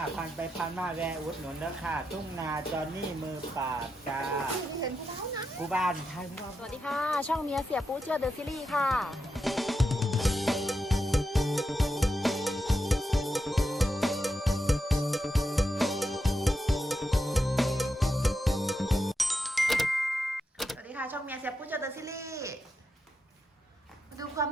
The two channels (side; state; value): both; normal; correlation 0.86